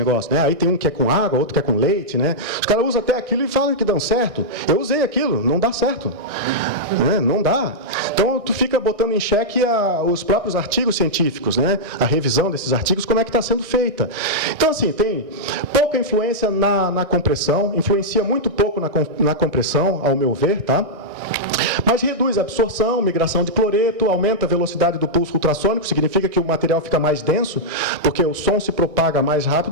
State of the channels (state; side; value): late; left; 1.6 ms